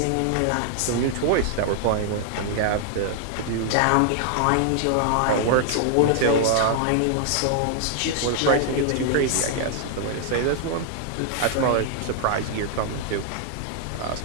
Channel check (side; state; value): both; different; correlation 0.00